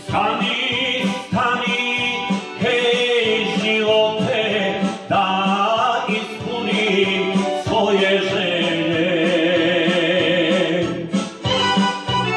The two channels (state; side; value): identical; both; correlation 1.00